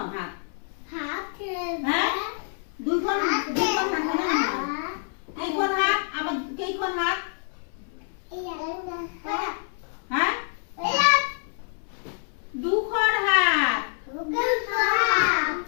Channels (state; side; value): silent; right; 61 dB below the other